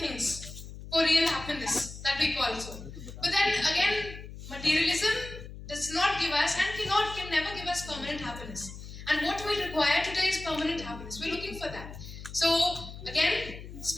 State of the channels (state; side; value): noise; left; hum, 13 dB below the sound